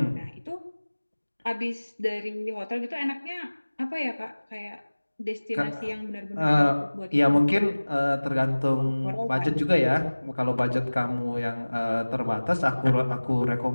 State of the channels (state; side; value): inverted; both; correlation -1.00